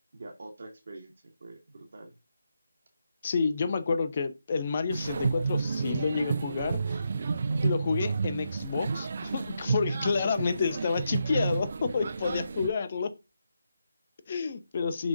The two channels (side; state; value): both; inverted; correlation -0.83